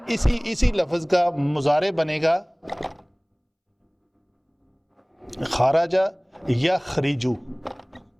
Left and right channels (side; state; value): both; identical; correlation 1.00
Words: اسی لفظ کا مضارع بنے گا خراجہ یخرجو,